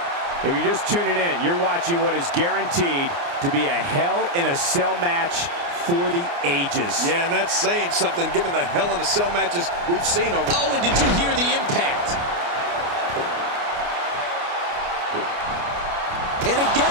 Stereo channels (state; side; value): late; left; 29 ms